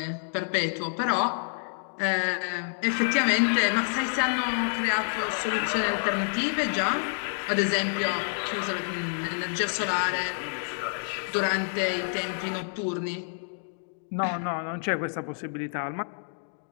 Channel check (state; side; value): silent; right; digital silence